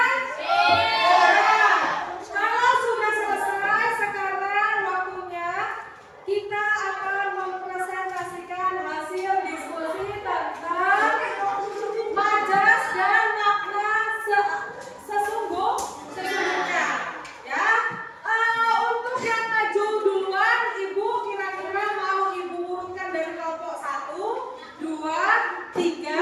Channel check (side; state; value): both; identical; correlation 1.00